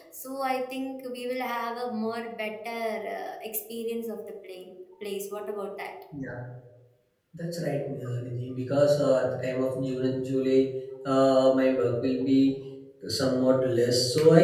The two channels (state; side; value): identical; both; correlation 1.00